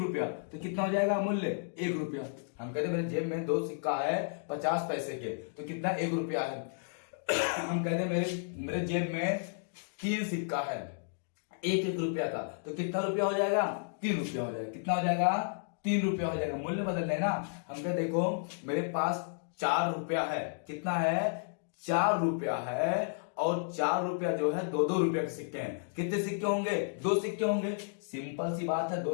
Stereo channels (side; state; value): right; silent; digital silence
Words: तो कितना हो जाएगा मूल्य 1 रुपया। हम कहते हैं मेरे जेब में 2 सिक्का है 50 पैसे के, तो कितना 1 रुपया है। हम कहते हैं मेरे जेब में 3 सिक्का है 1 रुपया का, तो कितना रुपया हो जाएगा 3 रुपया हो जाएगा। कितना हो जाएगा 3 रुपया हो जाएगा। मूल्य बदल लेना। हम कहते देखो मेरे पास 4 रुपया है, कितना है 4 रुपया है, और 4 रुपया जो है 2-2 रुपया के सिक्के हैं। कितने सिक्के होंगे 2 सिक्के होंगे। सिंपल सी बात है, 2